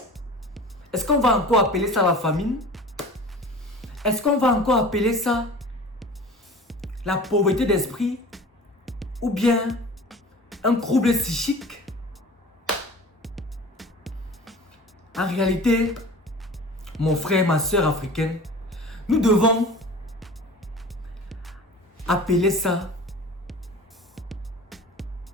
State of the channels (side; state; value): both; normal; correlation 0.40